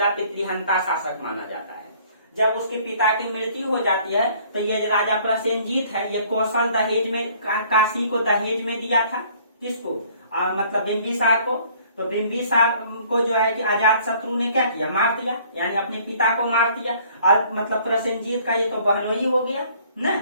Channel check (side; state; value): both; inverted; correlation -0.57